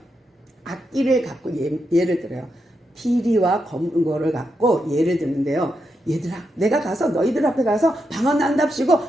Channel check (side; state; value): both; normal; correlation 0.84